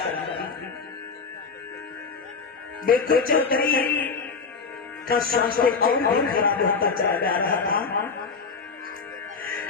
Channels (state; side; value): quieter; right; 5.0 dB